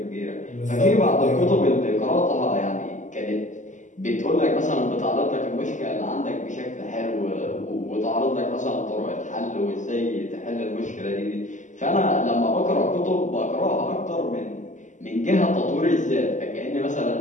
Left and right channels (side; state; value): right; late; 0.36 ms